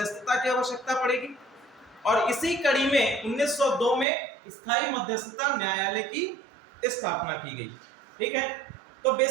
की आवश्यकता पड़ेगी। और इसी कड़ी में 1902 में स्थायी मध्यस्थता न्यायालय की स्थापना की गई। ठीक है, तो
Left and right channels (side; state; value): left; drops out; at 4.0 s